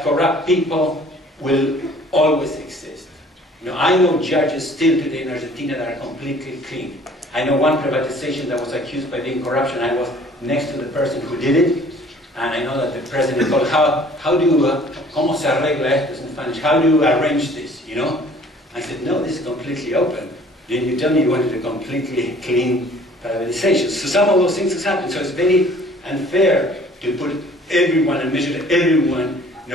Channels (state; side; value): normal; both; correlation 0.53